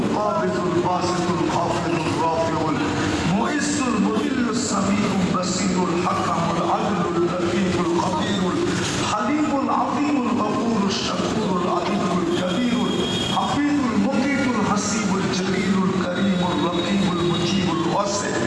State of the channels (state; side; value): identical; both; correlation 1.00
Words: কাবিদুল বাসিতুল খাফিদুর রাফিউল মুইসুল মুদিল্লুস সামিউল বাসিরুল হাকামুল আদলুল লতীফুল খবীরুল হালিমুল আযীমুল গফুরুশ শাকুরুল আযীমুল কবীরুল হাফিজুল মুকিতুল হাসিবুল জলিলুল করিমুল রকিবুল মুজিবুল ওয়াসি